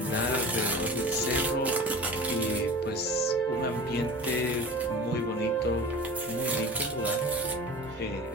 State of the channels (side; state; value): both; normal; correlation 0.37